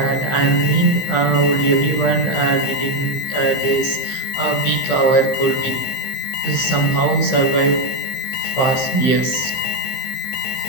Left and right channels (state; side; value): late; right; 15 ms